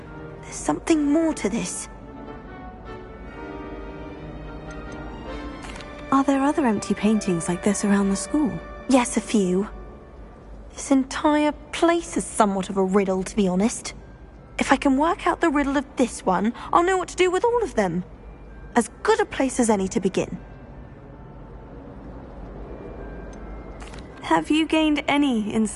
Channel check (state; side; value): identical; both; correlation 1.00